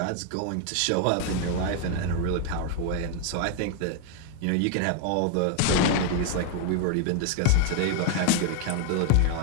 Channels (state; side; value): different; both; correlation 0.00